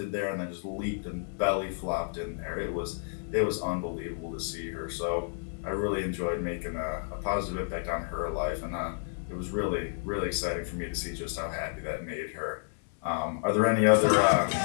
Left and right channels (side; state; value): right; silent; 57 dB below the other